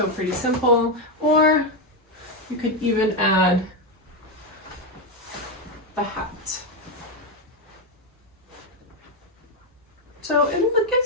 pretty simple. Or you could even add the hat. So it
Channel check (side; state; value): both; normal; correlation 0.06